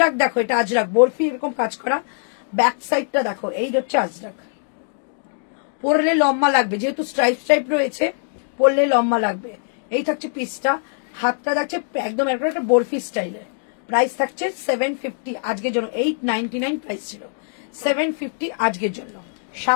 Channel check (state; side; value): silent; right; 64 dB below the other